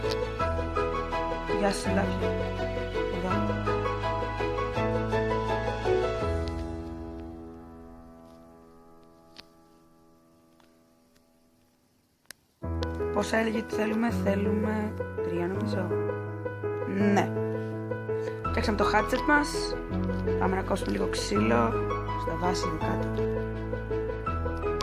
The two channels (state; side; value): identical; both; correlation 1.00